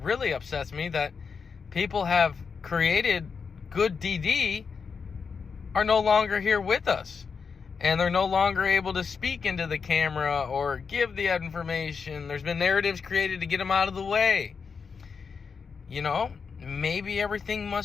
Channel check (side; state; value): right; quieter; 5.7 dB